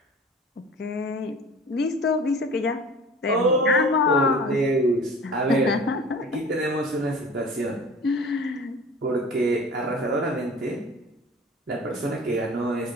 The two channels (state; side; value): normal; both; correlation 0.41